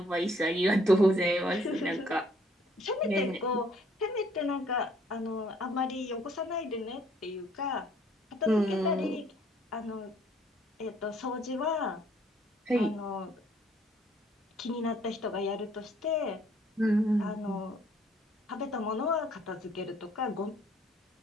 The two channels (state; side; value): normal; both; correlation 0.62